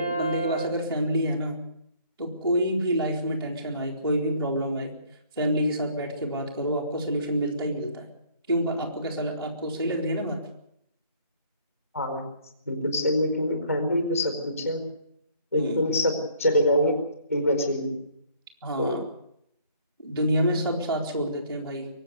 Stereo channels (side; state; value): both; inverted; correlation -0.59